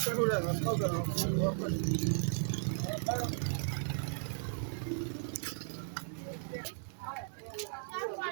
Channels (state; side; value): silent; left; digital silence